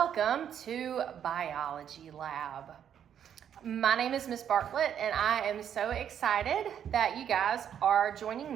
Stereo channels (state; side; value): quieter; left; 9.1 dB